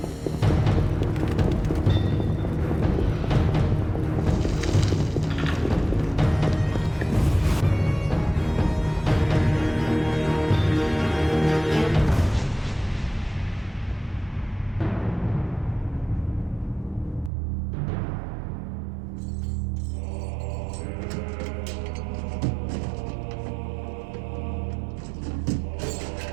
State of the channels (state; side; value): drops out; left; at 17.3 s